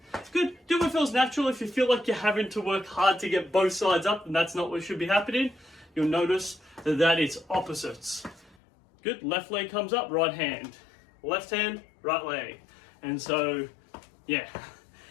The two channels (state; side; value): drops out; right; at 8.6 s